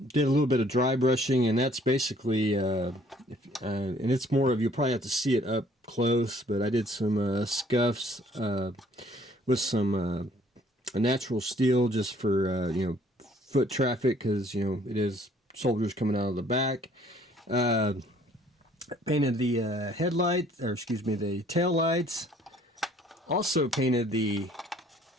a little bit of dry brushing, and that's basically, and it's more of, you'll probably have to see it up close, but I did some scuffs with some natural steel just for, foot traffic, because, it is soldiers coming out of the back. Uh, Painted the headlights, or excuse me, the tail lights. Also painted the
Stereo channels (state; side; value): normal; both; correlation 0.59